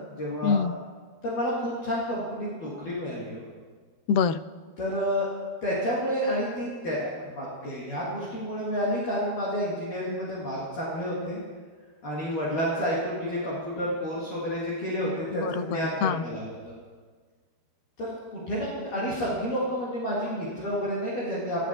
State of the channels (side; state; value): right; late; 13 ms